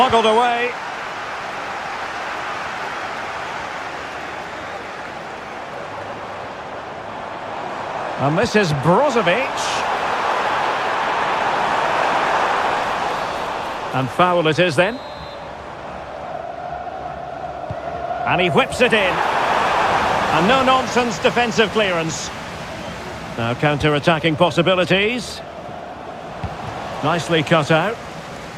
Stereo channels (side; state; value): both; identical; correlation 1.00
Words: away. And this is Brozovic. And foul it is then. And he whips it in. And no-nonsense defensive clearance. Now counter-attacking possibilities. Nicely cut out.